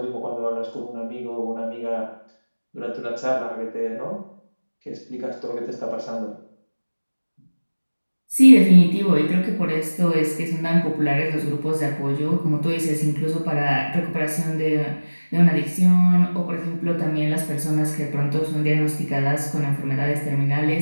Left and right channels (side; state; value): both; inverted; correlation -1.00